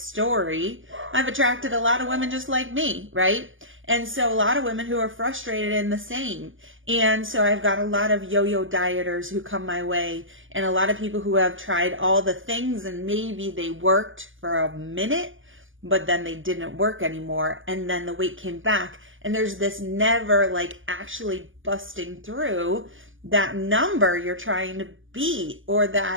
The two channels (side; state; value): left; late; 0.58 ms